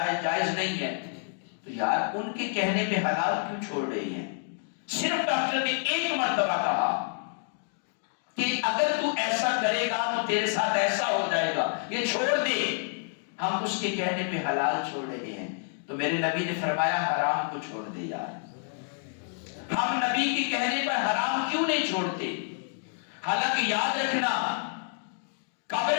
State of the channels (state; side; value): silent; right; 59 dB below the other